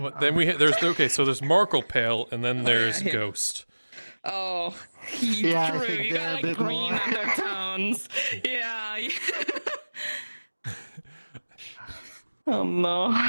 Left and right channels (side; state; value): both; inverted; correlation -1.00